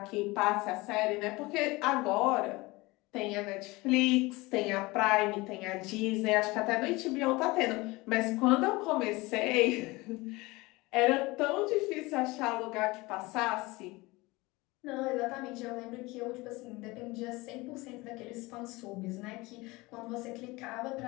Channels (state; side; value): quieter; right; 22.4 dB